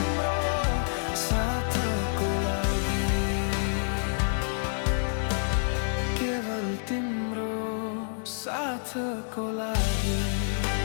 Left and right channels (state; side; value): silent; right; digital silence